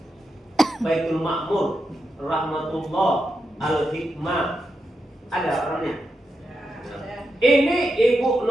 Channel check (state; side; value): normal; both; correlation 0.86